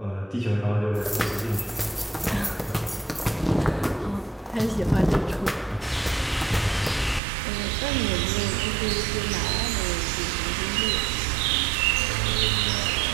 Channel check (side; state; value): left; drops out; at 7.2 s